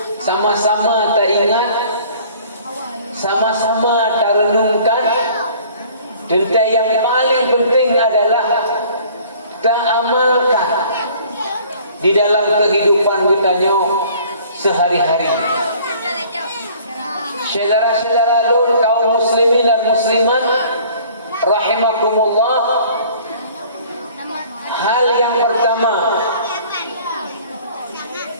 sama-sama teringat, sama-sama terenungkan. Tentang yang paling penting adalah kita amalkan di dalam kehidupan kita sehari-hari. Saudara-saudara kaum muslimin dan muslimat rahimakumullah, hal yang pertama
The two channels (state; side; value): inverted; both; correlation -0.52